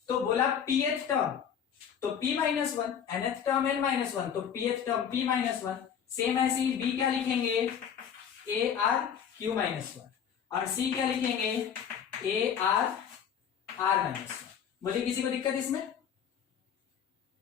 तो बोला pth टर्म तो p-1, nth टर्म n-1, तो pth टर्म p-1। सेम ऐसे ही b क्या लिखेंगे, a r q-1, और c क्या लिखेंगे, a r r-1। बोलिए किसी को दिक्कत इसमें?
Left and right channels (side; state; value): right; quieter; 8.1 dB